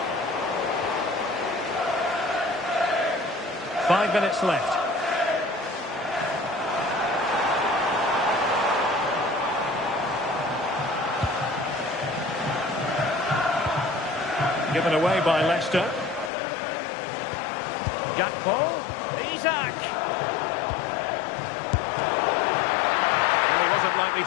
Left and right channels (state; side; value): drops out; right; at 16.3 s